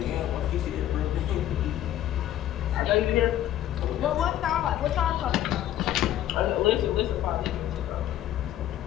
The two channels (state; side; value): quieter; right; 12.4 dB